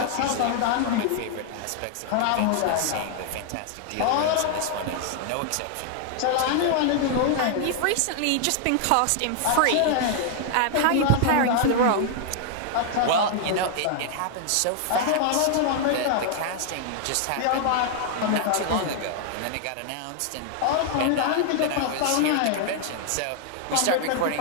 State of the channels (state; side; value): different; both; correlation 0.00